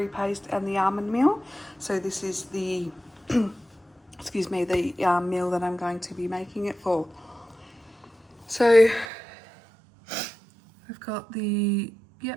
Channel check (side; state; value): left; drops out; at 9.1 s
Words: paste and the almond meal. So this is the excuse me, the meal that I'm going to be making it for. So I've got the,